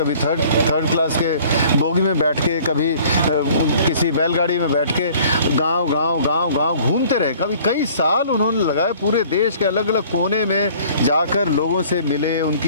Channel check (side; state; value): both; inverted; correlation -0.52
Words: थर्ड क्लास के बोगी में बैठ के, कभी किसी बैलगाड़ी में बैठ के गांव घूमते रहे। कभी कई साल उन्होंने लगाए, पूरे देश के अलग अलग कोने में जाकर लोगों से मिले,